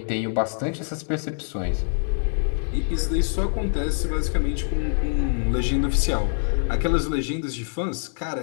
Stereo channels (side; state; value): right; silent; digital silence